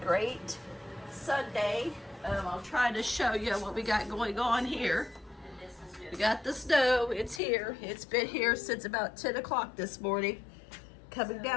Sunday. I'll try to show you what we got going on here. We got the snow. It's here. It's been here since about 10 o'clock this morning. Coming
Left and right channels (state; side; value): drops out; right; at 7.4 s